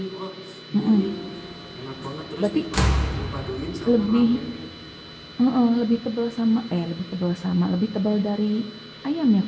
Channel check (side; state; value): both; identical; correlation 1.00